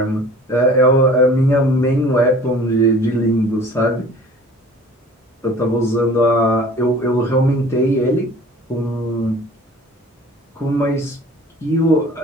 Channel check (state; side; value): normal; both; correlation 0.47